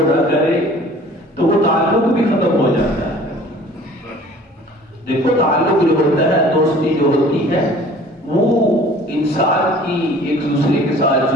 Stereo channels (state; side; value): normal; both; correlation 0.49